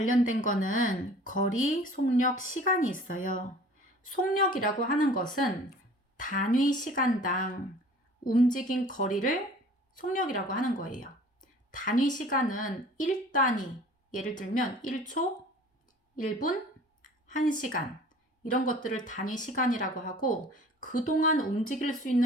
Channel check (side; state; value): both; normal; correlation 0.48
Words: 거는 거리, 속력, 시간이 있어요. 속력이라고 하는 것은 단위 시간당 움직인 거리를 속력이라고 하는 거예요. 단위 시간은 1단위, 예를 들면 1초, 1분, 1시간 이런 것들을 단위 시간이라고 하고 그동안 움직일 수